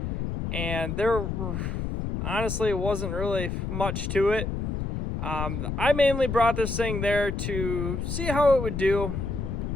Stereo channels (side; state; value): left; noise; rumble, 3 dB below the sound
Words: And there, honestly, wasn't really much to it. I mainly brought this thing there to see how it would do